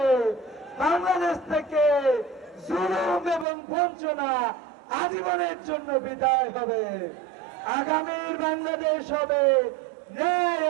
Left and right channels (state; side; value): drops out; left; at 3.5 s